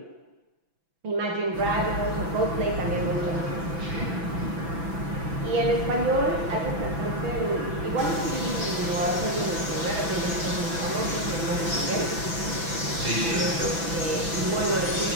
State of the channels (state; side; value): late; left; 6.0 ms